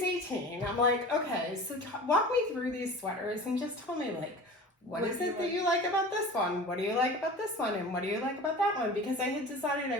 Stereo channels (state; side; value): normal; both; correlation 0.37